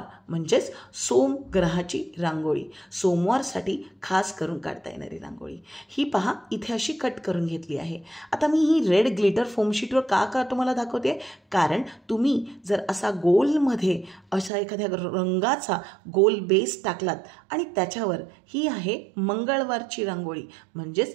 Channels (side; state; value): left; drops out; at 14.5 s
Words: म्हणजेच सोम ग्रहाची रांगोळी. सोमवारसाठी खास करून काढता येणारी रांगोळी. ही पहा इथे अशी कट करून घेतली आहे. आता मी ही रेड ग्लिटर फोम शीटवर का तुम्हाला दाखवते, कारण तुम्ही जर असा गोलमध्ये असा एखाद्या रंगाचा गोल बेस टाकलात आणि त्याच्यावर ही आहे मंगळवारची रांगोळी